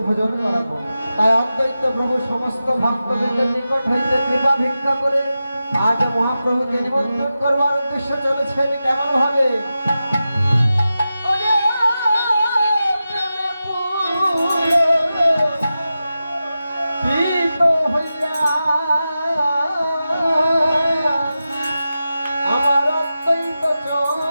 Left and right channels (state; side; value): inverted; both; correlation -0.92